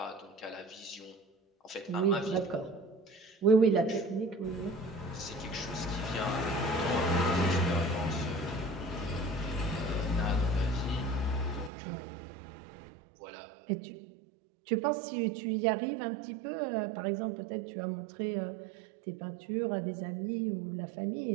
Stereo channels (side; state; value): left; drops out; at 11.7 s